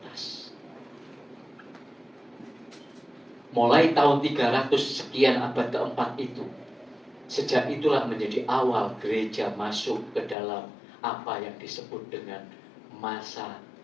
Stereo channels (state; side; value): drops out; right; at 10.4 s